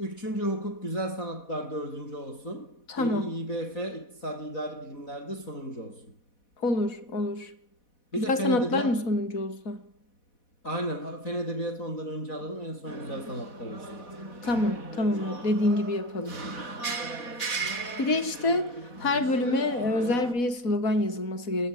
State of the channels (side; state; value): right; late; 4.1 ms